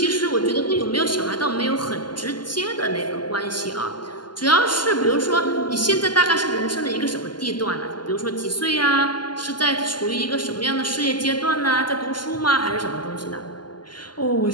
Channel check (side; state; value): right; late; 0.71 ms